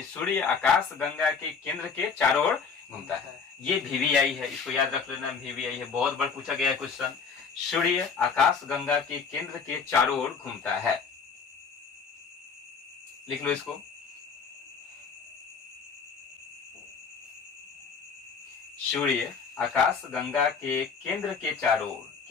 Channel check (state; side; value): quieter; right; 5.7 dB